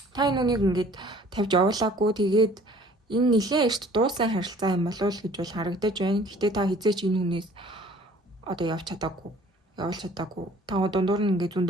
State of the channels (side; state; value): both; normal; correlation 0.53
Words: Та энэ үнийг ингээд тавьж явуулаагүй тэгээд энэ нэлээд эрт дууссан харилцаа юм болов уу гэж бол харагдаж байна. Гэхдээ та хизээч энэ хүнээс одоо явуулж чадаагүй. Та дундуур нь ингээд